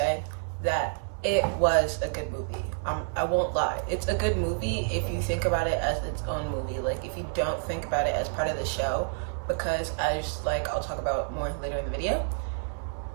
that it was a good movie. I won't lie. It's a good movie if you think about it as its own movie. Like, if you don't think about it as part of the show, because I'll talk about more later in the video.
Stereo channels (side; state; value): left; silent; digital silence